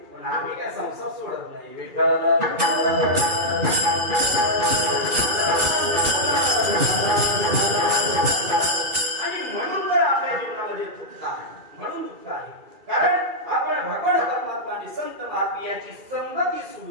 पण आम्ही काय संसार सोडत नाही. विठ्ठल आणि म्हणून तर आपल्या जीवनामध्ये दुःख आहे, म्हणून दुःख आहे. कारण आपण भगवान परमात्मा आणि संत महात्मे यांची संगती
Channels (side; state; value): left; late; 2.4 ms